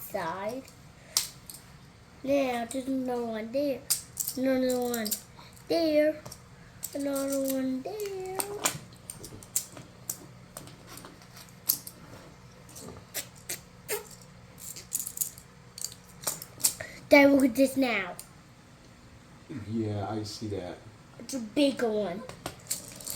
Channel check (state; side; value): identical; both; correlation 1.00